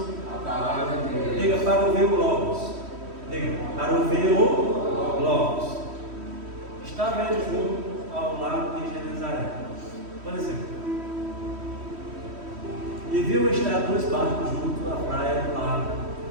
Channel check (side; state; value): left; late; 3.1 ms